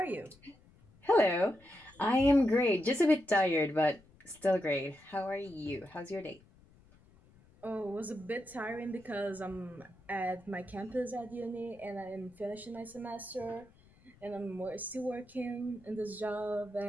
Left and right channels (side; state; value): left; noise; rumble, 27 dB below the sound